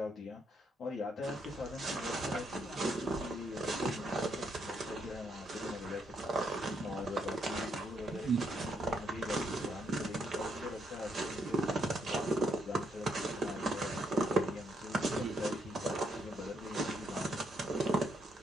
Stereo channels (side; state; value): both; normal; correlation 0.75